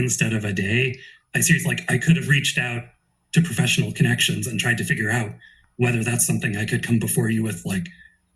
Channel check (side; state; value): both; identical; correlation 1.00